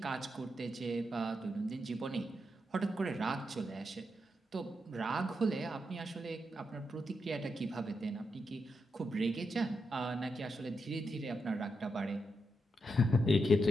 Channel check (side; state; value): both; normal; correlation 0.85